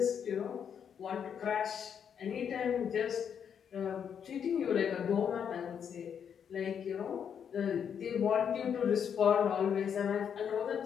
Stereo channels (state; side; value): quieter; right; 7.8 dB